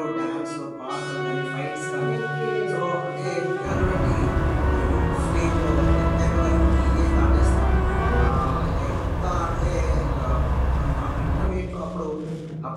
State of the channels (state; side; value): identical; both; correlation 1.00